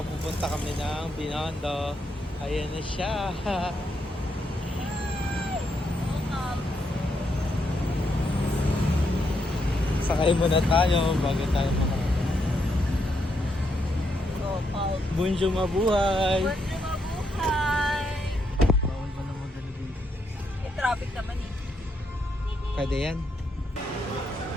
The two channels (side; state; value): both; normal; correlation 0.78